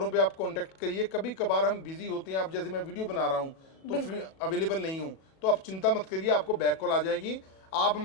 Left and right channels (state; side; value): late; right; 37 ms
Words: पे आप कांटेक्ट करिए। कभी कभार हम बिजी होते हैं, आप जैसे मैं वीडियो बना रहा हूं तो फ्री अवेलेबल नहीं हूं, तो आप चिंता मत करिए, आपको बैक कॉल आ जाएगी। आप